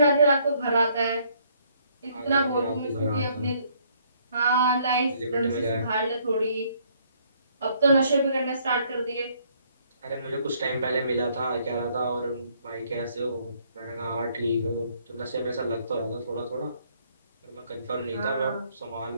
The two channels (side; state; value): both; inverted; correlation -0.66